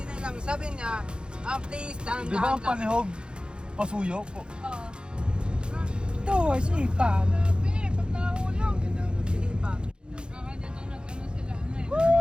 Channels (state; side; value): late; left; 0.051 ms